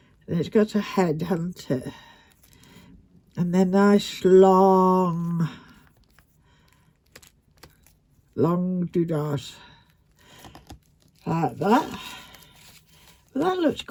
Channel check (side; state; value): both; identical; correlation 1.00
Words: And it's got a head, hasn't it? And then nice long doodahs. Like that. Well, that looks